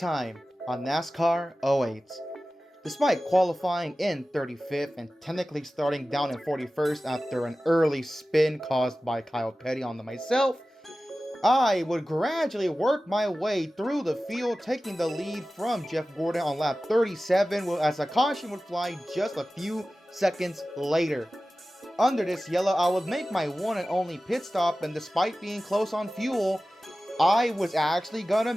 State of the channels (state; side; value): normal; both; correlation 0.96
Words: on NASCAR '08, despite qualifying in 35th and technically starting down in 41st after an early spin caused by Kyle Petty onto myself, I would gradually work my way through the field, taking the lead from Jeff Gordon on lap 37 as a caution would fly just a few seconds later. Under this yellow, I would make my one and only pit stop, and despite being close on fuel, I was actually gonna